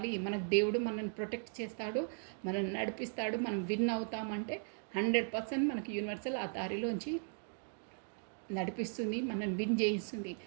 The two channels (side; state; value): left; silent; 53 dB below the other